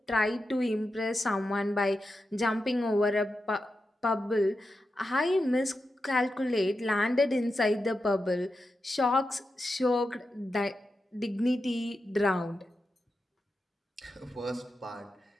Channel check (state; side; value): normal; both; correlation 0.89